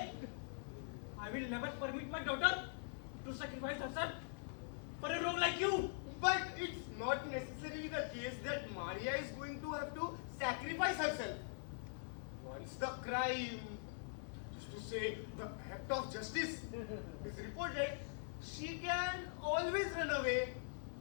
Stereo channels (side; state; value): right; silent; digital silence